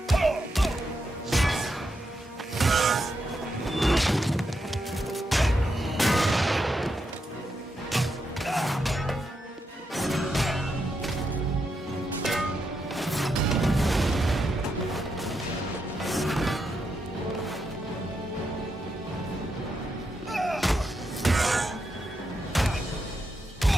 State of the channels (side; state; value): both; normal; correlation 0.83